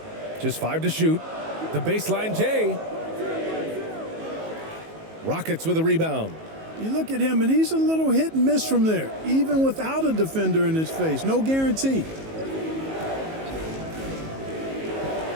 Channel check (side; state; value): left; late; 19 ms